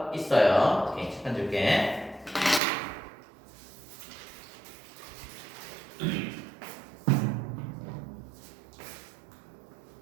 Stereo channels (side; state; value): left; drops out; at 2.6 s